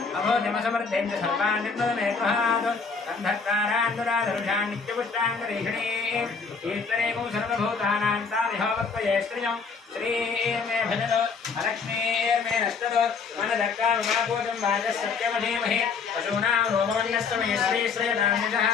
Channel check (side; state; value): right; quieter; 5.2 dB